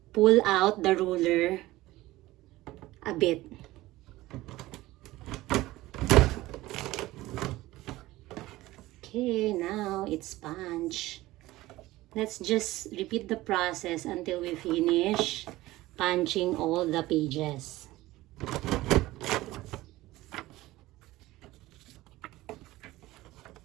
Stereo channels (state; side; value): quieter; left; 17.7 dB